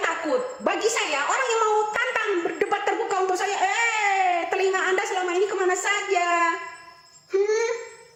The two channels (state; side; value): identical; both; correlation 1.00